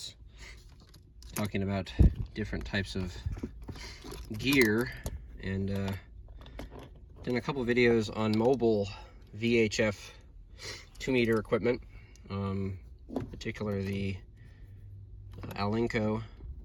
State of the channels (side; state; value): both; identical; correlation 1.00